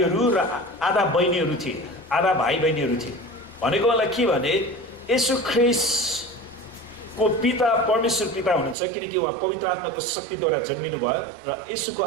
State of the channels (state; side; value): drops out; left; at 8.8 s